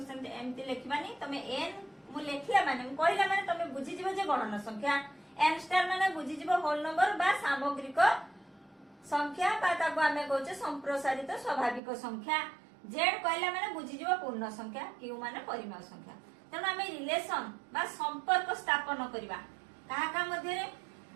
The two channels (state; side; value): drops out; left; at 11.8 s